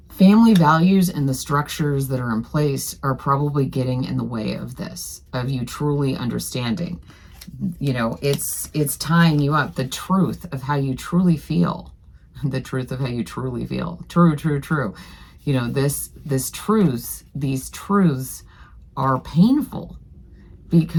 Family values and the structures that are in place are probably getting in the way of this, of you truly understanding. You know, it's tying you up. The truth of how you truly feel. The truth of how you truly feel. True. You know, these truths are painful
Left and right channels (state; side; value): identical; both; correlation 1.00